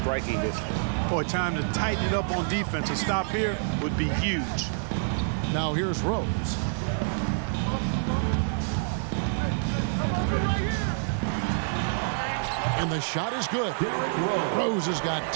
distance. Boy, time to tighten it up on defense. A stop here would be huge. Now here's Rose. And the shot is good. Rose has got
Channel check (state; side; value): silent; left; digital silence